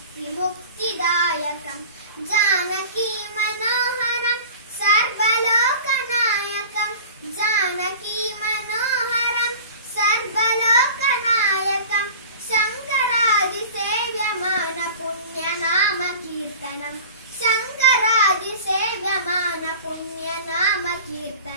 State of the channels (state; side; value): inverted; both; correlation -0.40